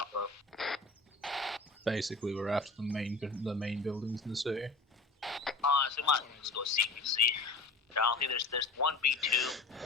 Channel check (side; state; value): right; quieter; 3.5 dB